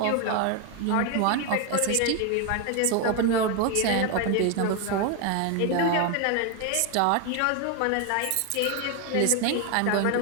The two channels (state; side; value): different; both; correlation 0.01